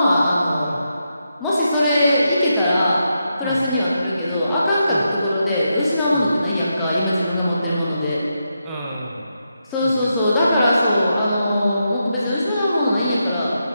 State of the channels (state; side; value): inverted; both; correlation -0.84